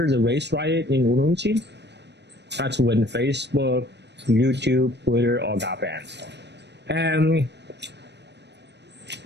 the race riot in Urumqi, that's when Facebook, YouTube, Twitter all got banned. And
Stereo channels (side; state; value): left; late; 0.50 ms